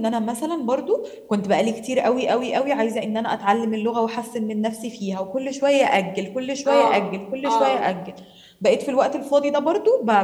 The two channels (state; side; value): identical; both; correlation 1.00